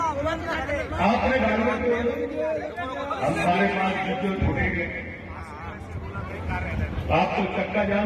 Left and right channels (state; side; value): identical; both; correlation 1.00